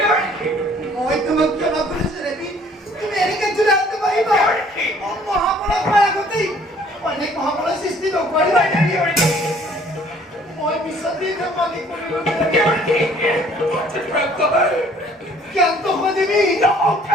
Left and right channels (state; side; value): normal; both; correlation 0.57